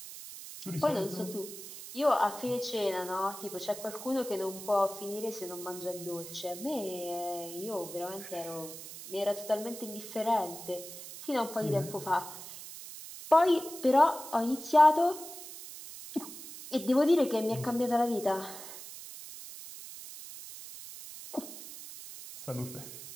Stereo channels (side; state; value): right; noise; hiss, 12 dB below the sound